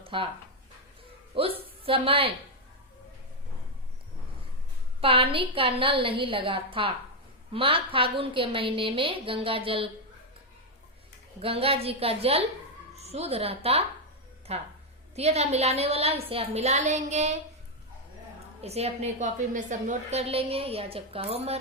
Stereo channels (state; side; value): normal; both; correlation 0.02